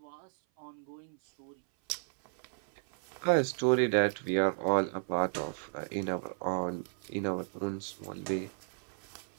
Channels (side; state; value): left; silent; 55 dB below the other